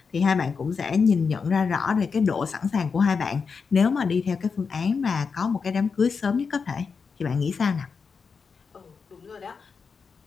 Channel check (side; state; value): right; quieter; 5.4 dB